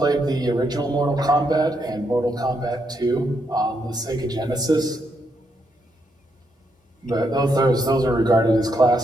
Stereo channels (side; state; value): both; normal; correlation 0.79